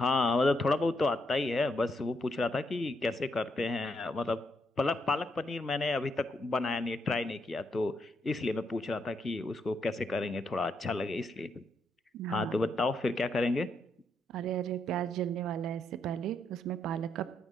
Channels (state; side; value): normal; both; correlation 0.78